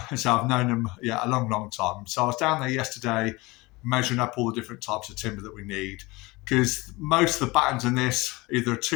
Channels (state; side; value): quieter; right; 22.9 dB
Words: so I've known them a long time. So I was down there yesterday measuring up all the different types of timber that we need, because most of the battens in this, either a